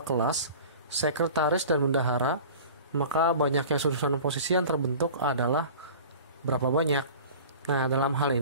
kelas, sekretaris, dan bendahara, maka banyaknya susunan posisi yang terbentuk adalah berapa banyak. Nah, dalam hal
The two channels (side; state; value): both; inverted; correlation -0.40